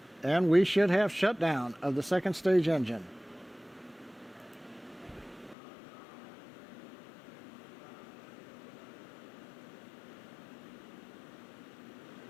and we should have shutdown of the second stage engine.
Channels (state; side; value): drops out; right; at 5.6 s